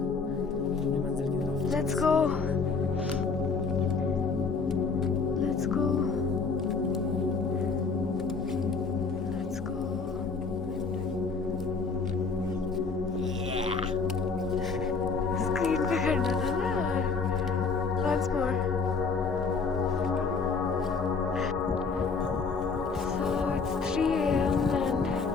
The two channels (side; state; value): right; quieter; 4.7 dB